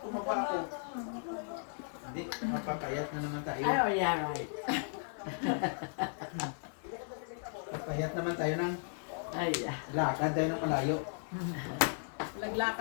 ako. Hindi, napapayat na naman tayo. Ay, oh yeah, right. Payat naman tayo ng Ay, lakad tayo ng malayo.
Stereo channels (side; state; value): right; silent; 54 dB below the other